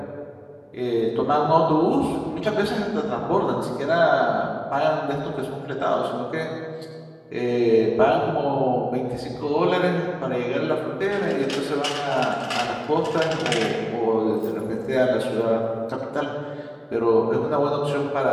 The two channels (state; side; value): identical; both; correlation 1.00